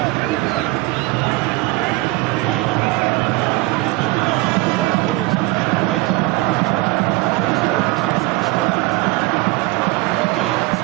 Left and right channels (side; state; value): left; quieter; 21.2 dB